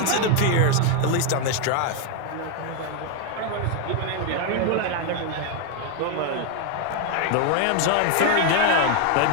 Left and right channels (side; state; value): both; different; correlation 0.01